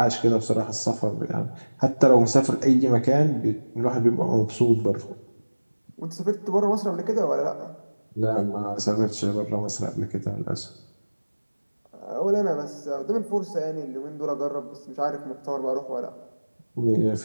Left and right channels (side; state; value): both; inverted; correlation -1.00